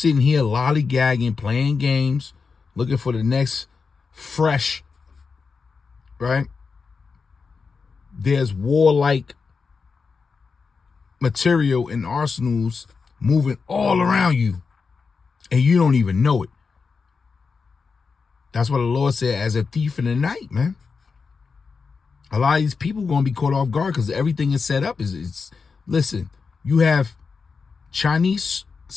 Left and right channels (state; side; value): quieter; right; 5.0 dB